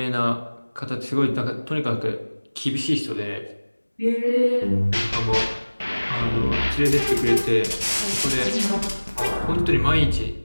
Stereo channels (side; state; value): both; inverted; correlation -1.00